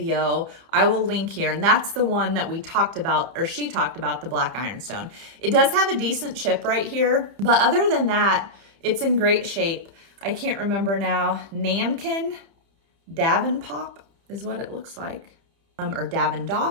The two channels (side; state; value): left; late; 30 ms